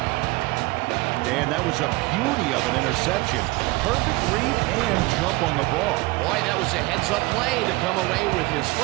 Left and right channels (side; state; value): left; quieter; 22.8 dB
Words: Dan, that was a beauty of an interception. Perfect read and jump on the ball. Boy, that was a heads-up play to come away with his